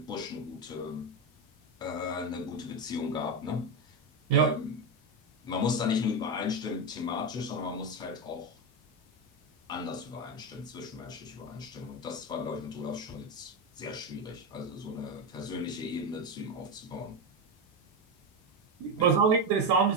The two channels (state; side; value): normal; both; correlation 0.12